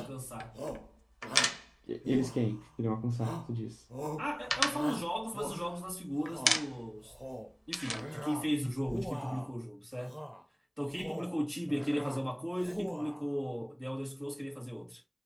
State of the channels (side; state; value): both; identical; correlation 1.00